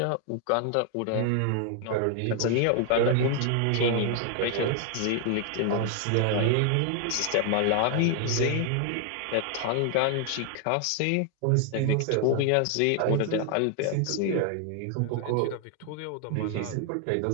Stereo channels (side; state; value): both; different; correlation 0.00